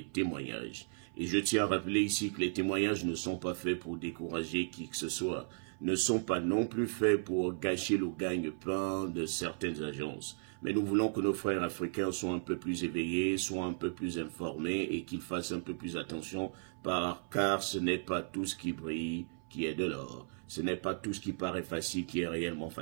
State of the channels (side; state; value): left; silent; 54 dB below the other